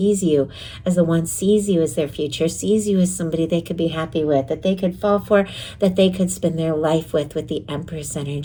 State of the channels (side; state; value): both; identical; correlation 1.00